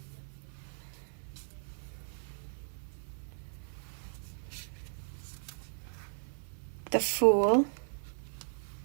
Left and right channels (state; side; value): silent; left; digital silence